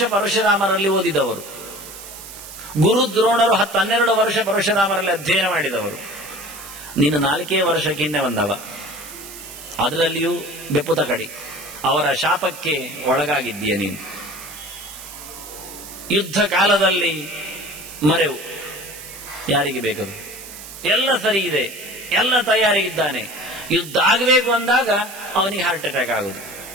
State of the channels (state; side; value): noise; right; hiss, 14 dB below the sound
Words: ಪರಶುರಾಮರಲ್ಲಿ ಓದಿದವರು. ಗುರು ದ್ರೋಣರು 10-12 ವರ್ಷ ಪರಶುರಾಮರಲ್ಲಿ ಅಧ್ಯಯನ ಮಾಡಿದವರು. ನೀನು 4 ವರ್ಷಕ್ಕೆ ಹಿಂದೆ ಬಂದವ, ಅದರಲ್ಲಿಯೂ ಬೆಪ್ಪುತ ಕಡಿ. ಅವರ ಶಾಪಕ್ಕೆ ಒಳಗಾಗಿದ್ದೀಯ ನೀನು. ಯುದ್ಧ ಕಾಲದಲ್ಲಿ ಮರೆವು ಯಾರಿಗೆ ಬೇಕದು? ಎಲ್ಲ ಸರಿ ಇದೆ, ಎಲ್ಲ ತಯಾರಿ ಇದ್ದಾನೆ. ಯುದ್ಧ ಆಗಬೇಕು ಅಂದಾಗ ಅವನಿಗೆ ಹಾರ್ಟ್ ಅಟ್ಯಾಕ್ ಆಗುದು.